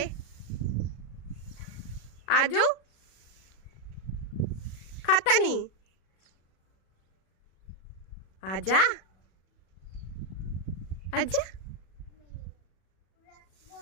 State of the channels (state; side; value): late; right; 37 ms